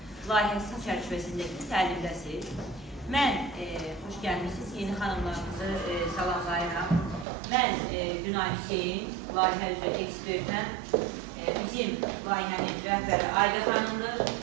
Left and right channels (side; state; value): left; drops out; at 7.2 s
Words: layihəsi çərçivəsindəki təlimdəsiz. Mən, xoş gəlmişsiniz, yeni xanımlarımızı salamlayıram. Mən Günay Hüseyin, layihə üzrə ekspertəm. Bizim layihənin rəhbəri Ayda xanımdır.